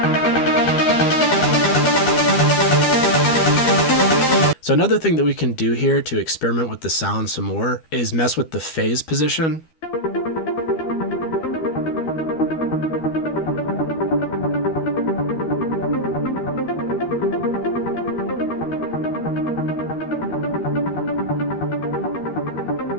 So another thing that we can do here to experiment with the sound some more is mess with the phase position.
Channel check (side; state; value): right; late; 12 ms